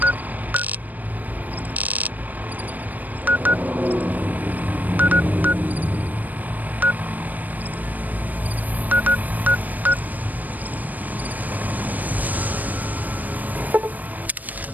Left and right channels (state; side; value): late; left; 0.082 ms